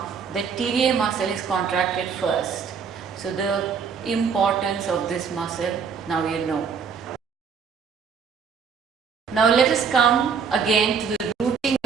the TVA muscle is contracted first. So the importance of this muscle, now you know. Now let us come again to the rooting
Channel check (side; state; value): left; quieter; 6.3 dB